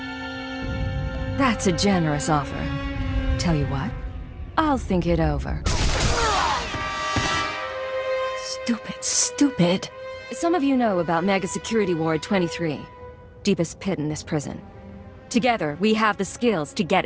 That's a generous offer. Tell you what, I'll think it over. Stupid. Some of you know about Mega Security Ward 23. Deepest pit in this prison. Together, we have the skills to get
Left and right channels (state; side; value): identical; both; correlation 1.00